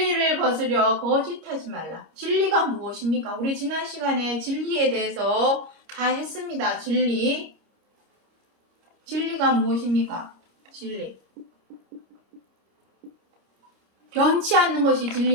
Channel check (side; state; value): left; late; 26 ms